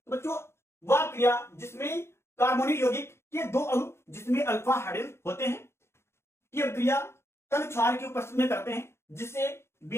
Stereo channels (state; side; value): late; right; 0.12 ms